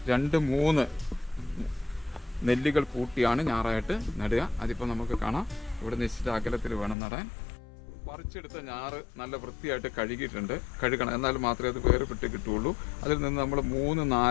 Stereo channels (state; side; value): drops out; right; at 7.0 s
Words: 2-3 നെല്ലുകൾ കൂട്ടിയാണ് ഞാറായിട്ട് നടുക. അതിപ്പോൾ നമുക്ക് കാണാം. ഇവിടെ നിശ്ചിത അകലത്തിൽ വേണം നടാൻ. പറിച്ചെടുത്ത ഞാറ് നല്ല വൃത്തിയായിട്ട് കഴുകണം. എന്നാൽ മാത്രമേ അത് വേർപെട്ട് കിട്ടുകയുള്ളൂ. അതിൽ നിന്ന് നമ്മൾ